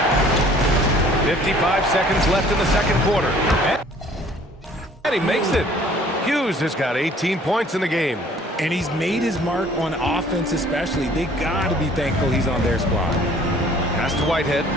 55 seconds left in the second quarter. And he makes it. Hughes has got 18 points in the game. And he's made his mark on offense especially. They got to be thankful he's on their squad. Pass to Whitehead.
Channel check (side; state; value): both; normal; correlation 0.55